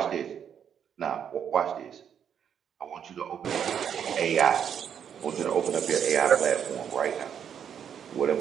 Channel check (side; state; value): left; quieter; 8.4 dB